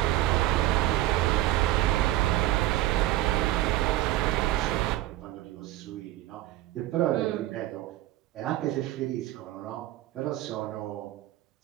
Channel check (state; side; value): quieter; left; 15.5 dB